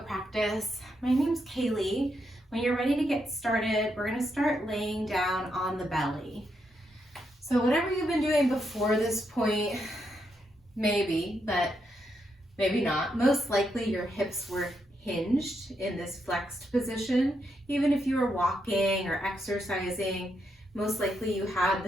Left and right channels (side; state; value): both; normal; correlation 0.80